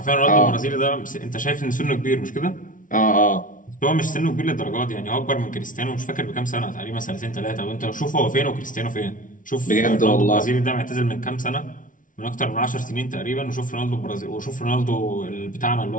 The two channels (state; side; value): late; right; 0.38 ms